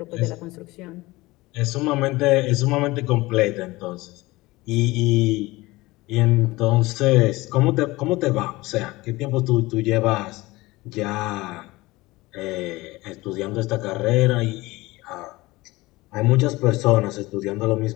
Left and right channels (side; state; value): right; quieter; 20.5 dB